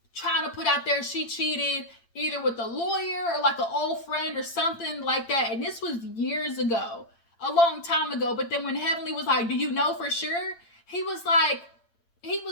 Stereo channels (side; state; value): right; late; 8.8 ms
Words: trying to put out there she cheated either with a lawyer or like an old friend or something like that. And this was years ago, a long time ago. But then when Heavenly was like, do you know for sure? He was like,